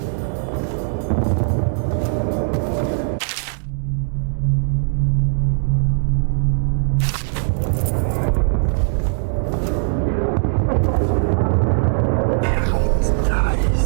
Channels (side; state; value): left; silent; 63 dB below the other